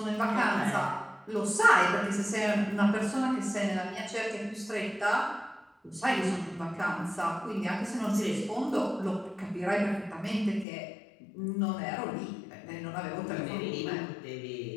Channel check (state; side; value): drops out; right; at 10.7 s